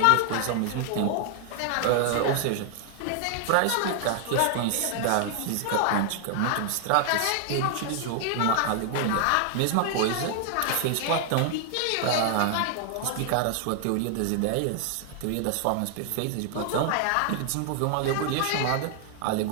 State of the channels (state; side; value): different; both; correlation 0.00